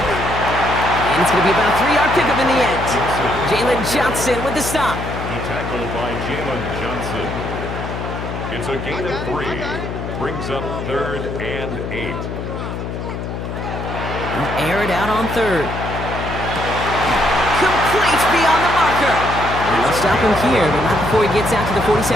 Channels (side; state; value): left; noise; hum, 6 dB below the sound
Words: And it's going to be about a 3-yard pickup in the end. Jalen Johnson with the stop. Tackled by Jalen Johnson. It's a gain of 3. Brings up 3rd and 8. Air it out on 3rd. Complete beyond the marker. And they'll stop him here, but not before he gets out to the